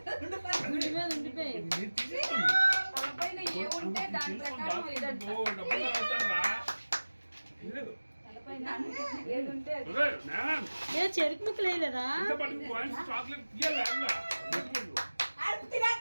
మీద ఉండిపోయి తలపైన ఏ ఉంటే దాని ప్రకారం ఇదంట ఏది ఉంటే ఏ చెరుకు ముక్కలు వేయలేదా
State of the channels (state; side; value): inverted; both; correlation -1.00